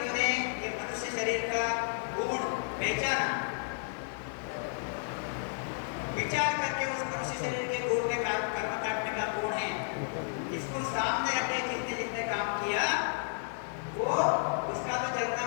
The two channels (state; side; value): silent; right; digital silence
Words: ये मनुष्य शरीर का गुण पहचाना, विचार करके उस मनुष्य शरीर के गुण में कर्म काटने का गुण है, इसको सामने रखे, जिसने जिसने काम किया वो उसका तो जलना